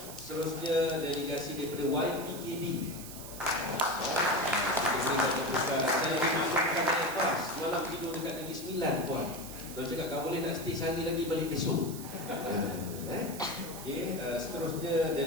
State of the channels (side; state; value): right; noise; hiss, 12 dB below the sound